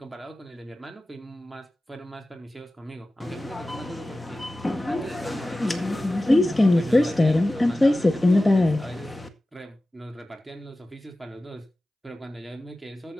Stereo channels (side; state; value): both; normal; correlation 0.96